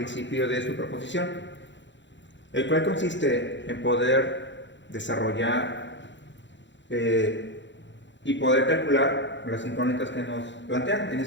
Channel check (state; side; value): late; right; 0.53 ms